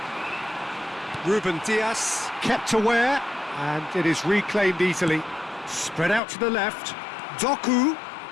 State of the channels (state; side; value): drops out; right; at 6.2 s